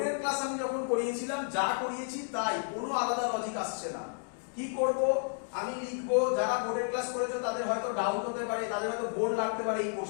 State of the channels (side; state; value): right; silent; 57 dB below the other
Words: ক্লাস আমি যখন করিয়েছিলাম যা করিয়েছি তাই, কোনো আলাদা লজিক আসছে না। কি করব? আমি লিখবো, যারা বোর্ডের ক্লাস করেছে তাদের হয়তো ডাউট হতে পারে, তাদের হয়তো বোর্ড লাগতে পারে এই